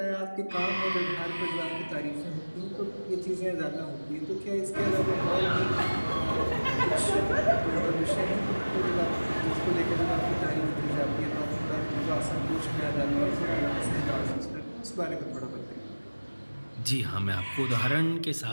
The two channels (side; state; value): both; inverted; correlation -1.00